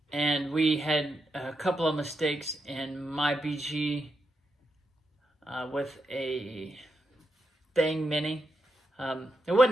And we had a couple of mistakes in my BG with a Bang Mini. It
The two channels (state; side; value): normal; both; correlation 0.85